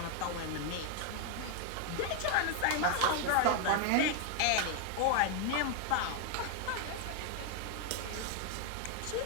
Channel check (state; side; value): different; both; correlation 0.00